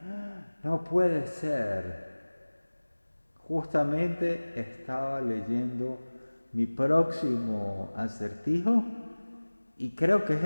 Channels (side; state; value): both; inverted; correlation -1.00